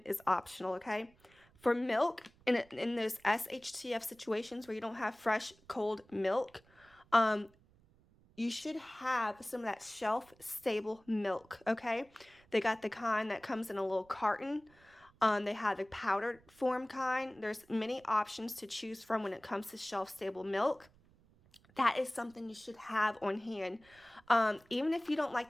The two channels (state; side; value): noise; right; rumble, 29 dB below the sound